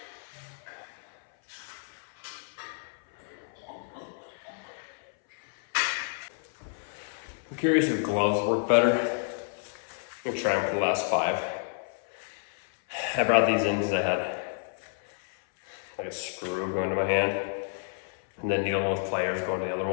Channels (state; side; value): silent; right; 58 dB below the other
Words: I'm curious if gloves work better. I'm gonna try them for the last 5. I brought these in because I had like a screw going to my hand, and then needle nose pliers going to the other